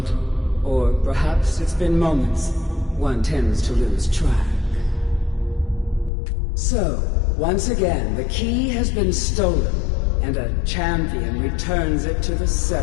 Or perhaps it's been moments. One tends to lose track. So, once again, the key has been stolen, and a champion returns it to the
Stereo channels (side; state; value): right; drops out; at 6.1 s